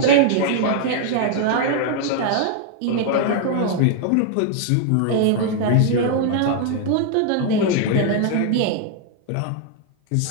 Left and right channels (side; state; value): both; different; correlation 0.00